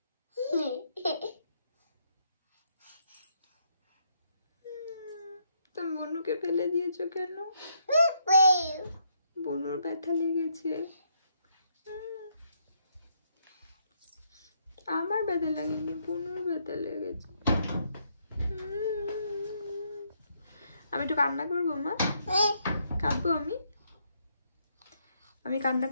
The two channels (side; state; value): both; inverted; correlation -0.74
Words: তুমি বনুকে ফেলে দিয়েছো কেন? বনুর ব্যথা লেগেছে, আমার ব্যথা লাগেনি, বনুর ব্যথা লেগেছে। আমি একটু কান্না করবো মা, কাঁদবো আমি কান্না